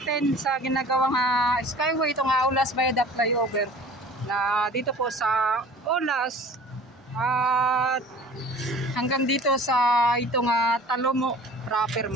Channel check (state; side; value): normal; both; correlation 0.45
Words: sa ginagawang Skyway, itong Aulas Viaduct Flyover na dito po sa Aulas at hanggang dito sa itong Talomo proper